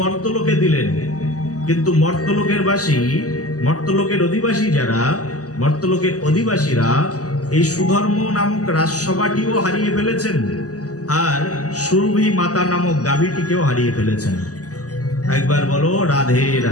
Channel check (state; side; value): late; right; 0.67 ms